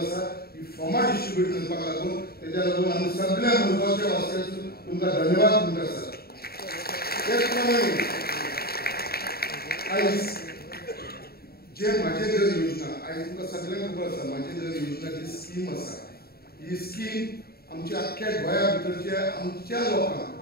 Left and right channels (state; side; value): late; right; 0.45 ms